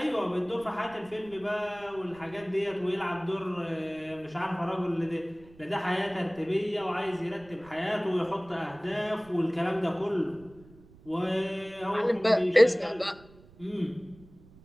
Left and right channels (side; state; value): right; noise; rumble, 24 dB below the sound